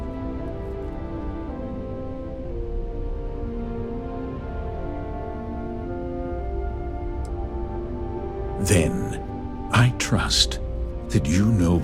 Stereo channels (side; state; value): both; identical; correlation 1.00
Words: Then, I trust that you know